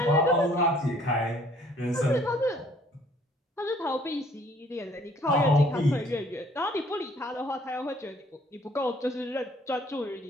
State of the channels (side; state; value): both; normal; correlation 0.59